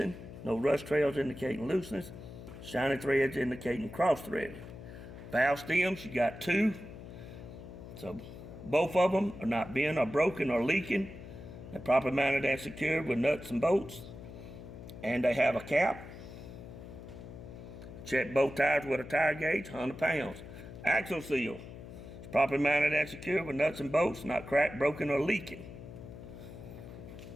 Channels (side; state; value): left; noise; hum, 13 dB below the sound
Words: No rust trails indicating looseness. Shiny threads indicating cross-threaded. Valve stems, you got 2. So both of them are not bent or broken or leaking. They're properly mounted and secured with nuts and bolts. And they have a cap. Check both tires with a tire gauge, 100 pounds. Axle seal, it's properly mounted and secured with nuts and bolts, not cracked, broken, or leaking.